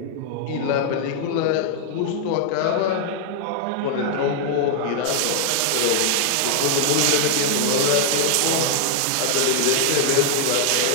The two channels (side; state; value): both; different; correlation -0.01